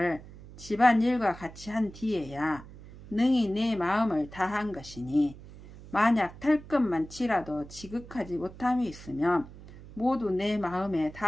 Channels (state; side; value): noise; right; hum, 17 dB below the sound